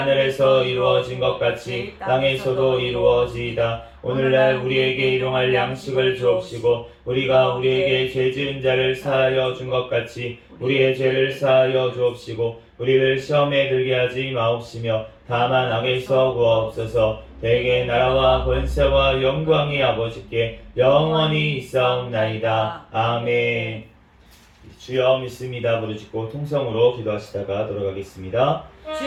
이루어진 것 같이 땅에서도 이루어지이다. 오늘날 우리에게 일용할 양식을 주옵시고 우리가 우리에게 죄 지은 자를 사하여 준 것 같이 우리의 죄를 사하여 주옵시고 우리를 시험에 들게 하지 마옵시며 다만 악에서 구하옵소서. 대개 나라와 권세와 영광이 아버지께 영원히 있사옵나이다. 아멘. 주여 믿습니다. 부르짖고 통성으로 기도하시다가 돌아가겠습니다.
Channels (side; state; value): both; identical; correlation 1.00